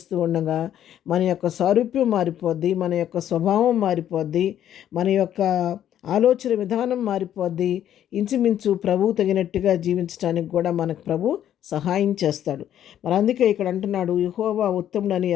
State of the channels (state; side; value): quieter; right; 10.8 dB